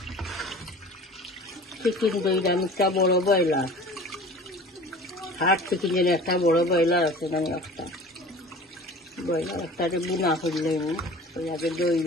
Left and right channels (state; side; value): normal; both; correlation 0.42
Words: চিকেন দইলাম একটা বড় ব্রয়লার, হাট চিকেন যেন একটা বড় ব্রয়লার আছে, মানে একটা ব্রয়লার একটাতে বুনা করলে আগে দই